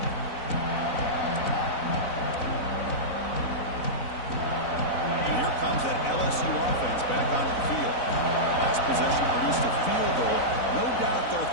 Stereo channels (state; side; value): late; right; 4.0 ms